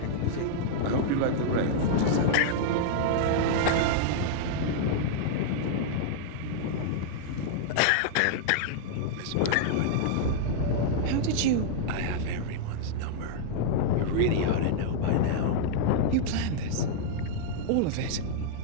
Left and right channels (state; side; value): different; both; correlation -0.01